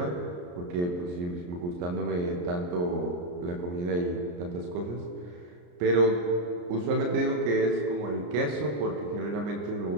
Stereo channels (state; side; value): late; left; 34 ms